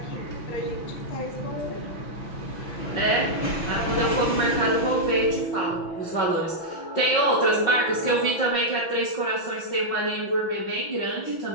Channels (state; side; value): late; right; 6.1 ms